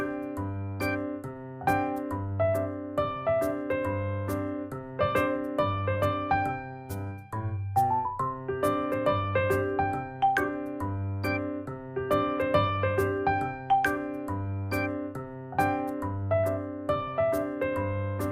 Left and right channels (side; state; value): both; identical; correlation 1.00